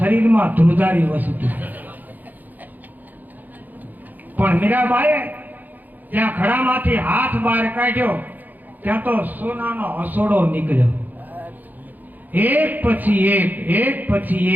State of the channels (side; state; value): left; late; 0.084 ms